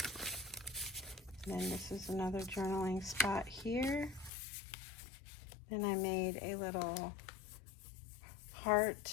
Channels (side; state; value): right; drops out; at 4.3 s